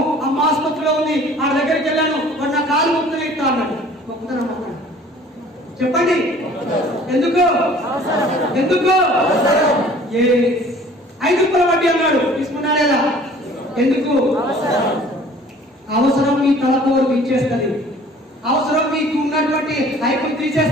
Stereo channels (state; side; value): normal; both; correlation 0.51